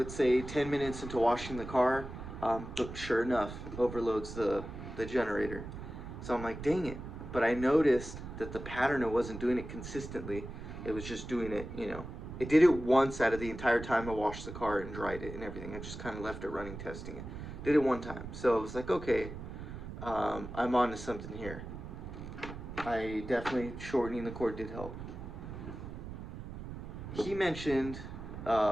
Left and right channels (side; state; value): right; noise; rumble, 10 dB below the sound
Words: say 10 minutes into washing the car, but sure enough, overloads the generator. So I'm like, dang it. But I noticed that the pattern, it wasn't doing it consistently. It was just doing it, you know. It did it once out of the entire time I washed the car and dried it and everything. I just kind of left it running, testing it. Did it one time. So I was like, okay, I'm on to something here. I definitely, shortening the cord did help. He mentioned